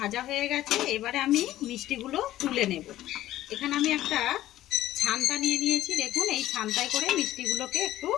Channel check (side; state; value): right; quieter; 14.2 dB